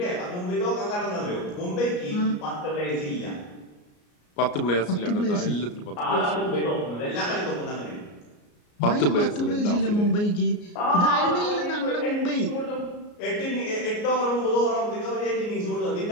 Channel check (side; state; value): right; late; 34 ms